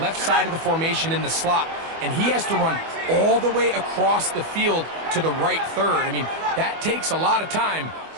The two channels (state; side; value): late; left; 24 ms